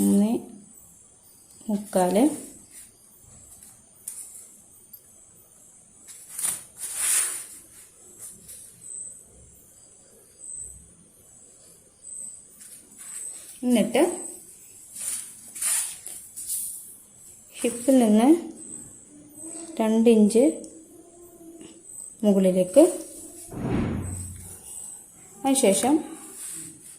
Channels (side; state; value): both; identical; correlation 1.00